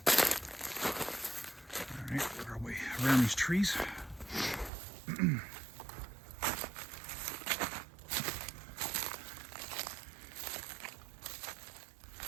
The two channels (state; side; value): drops out; left; at 4.7 s